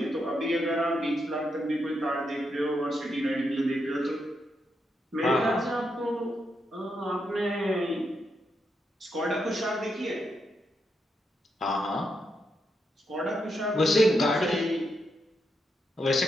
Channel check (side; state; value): both; normal; correlation 0.82